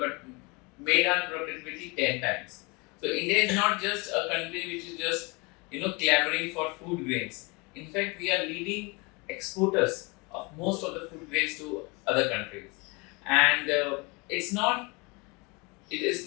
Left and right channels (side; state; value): right; quieter; 28.1 dB